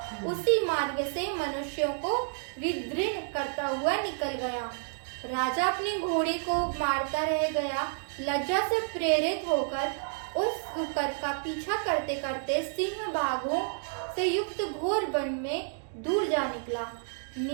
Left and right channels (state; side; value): silent; left; digital silence